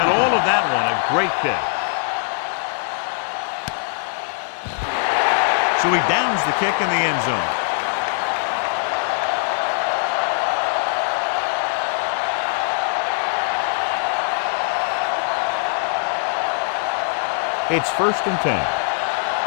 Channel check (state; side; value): silent; right; 62 dB below the other